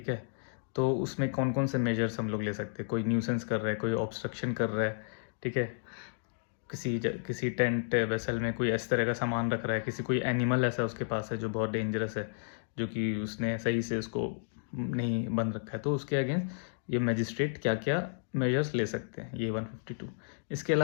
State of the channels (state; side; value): silent; right; digital silence